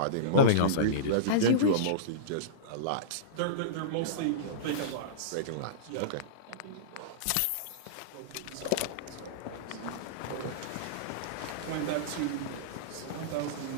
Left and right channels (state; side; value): different; both; correlation -0.04